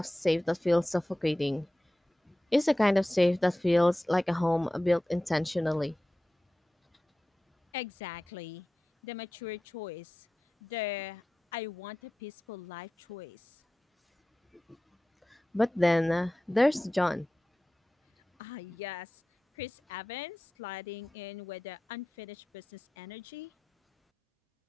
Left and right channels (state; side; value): normal; both; correlation 0.95